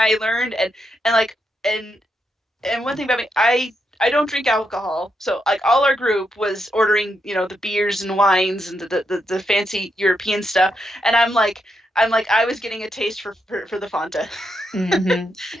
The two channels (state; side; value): normal; both; correlation 0.82